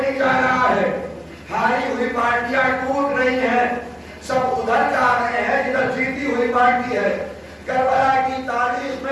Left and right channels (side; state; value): both; identical; correlation 1.00